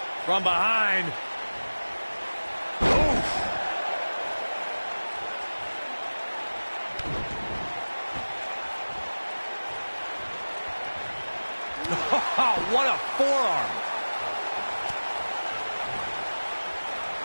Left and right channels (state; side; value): inverted; both; correlation -1.00